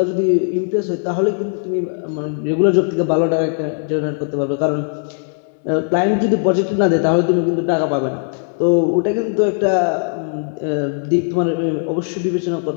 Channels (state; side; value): silent; right; 62 dB below the other